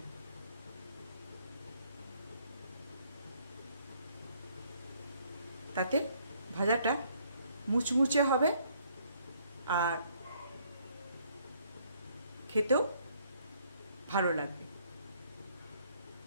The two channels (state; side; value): inverted; both; correlation -0.65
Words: তাতে ভাজাটা মুচমুচে হবে আর খেতেও ভালো লাগবে।